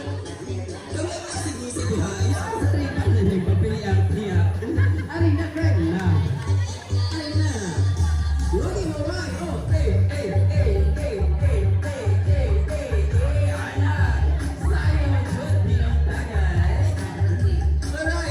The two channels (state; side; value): identical; both; correlation 1.00